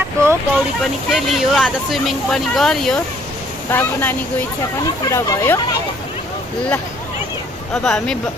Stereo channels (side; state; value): both; normal; correlation 0.62